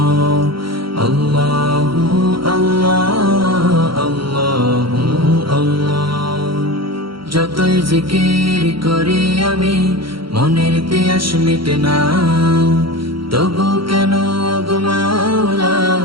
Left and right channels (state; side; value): late; left; 0.74 ms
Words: আল্লাহু আল্লাহ আল্লাহু আল্লাহ। যতই জিকির করি আমি মনের তিয়াস মিটে না, তবু কেন গো মাওলা